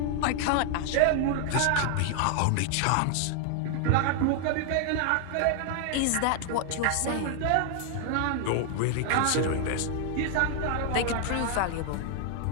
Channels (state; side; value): different; both; correlation 0.00